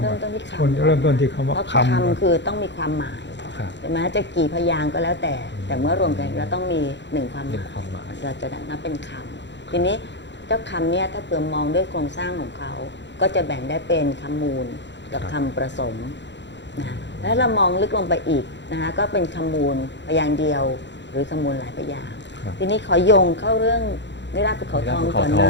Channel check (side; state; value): right; late; 0.52 ms